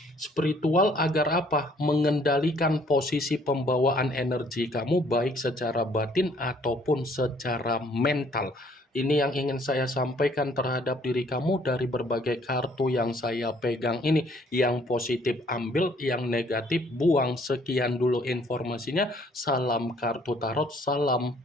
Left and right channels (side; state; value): both; normal; correlation 0.62